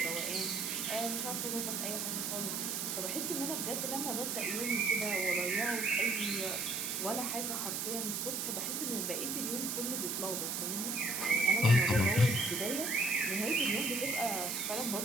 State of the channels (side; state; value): right; noise; hiss, 1 dB below the sound